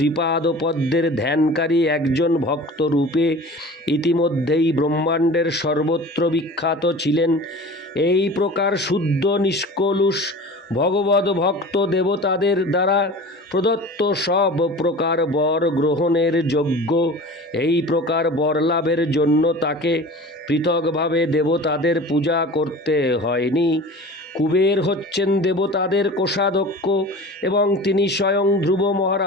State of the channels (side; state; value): both; normal; correlation 0.38